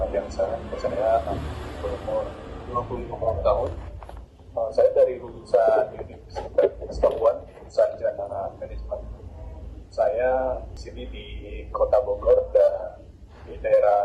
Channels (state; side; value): identical; both; correlation 1.00